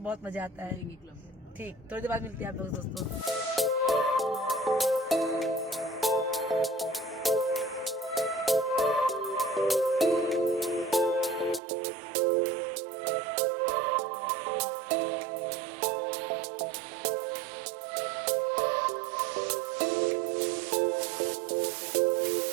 बहुत मजा आता है। ठीक, थोड़ी देर बाद मिलते हैं आप लोग दोस्तों।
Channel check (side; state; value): left; drops out; at 11.6 s